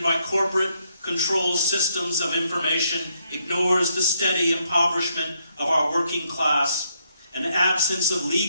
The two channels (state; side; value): inverted; both; correlation -0.75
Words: by corporate control systems of information, ignores the steady impoverishment of our working class and absence of